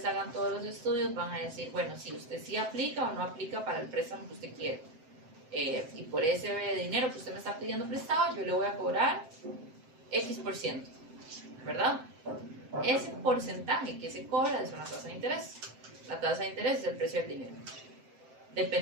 hagan todos los estudios, van a decir, bueno, si usted sí aplica o no aplica para el préstamo que usted quiere. Y por ese dinero que usted me está pidiendo prestado, yo le voy a cobrar X%, ¿verdad? Ese porcentaje que se cobra es una tasa de interés. La tasa de interés es el precio del dinero.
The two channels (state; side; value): late; left; 7.7 ms